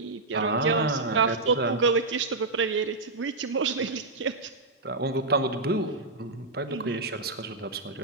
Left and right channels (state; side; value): quieter; left; 3.3 dB